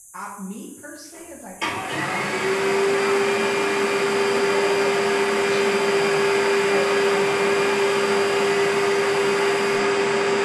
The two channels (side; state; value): both; identical; correlation 1.00